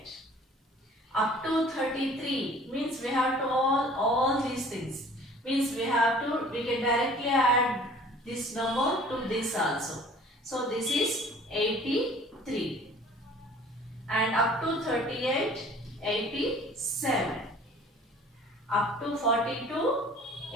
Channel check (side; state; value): both; normal; correlation 0.50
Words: Up to 33 means we have to all these things. Means we can directly add this number to this also. So this is 83. And up to 38, 87. Up to 42,